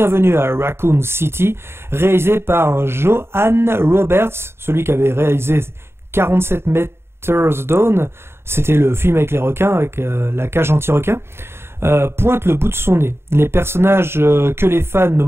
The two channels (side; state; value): left; late; 0.12 ms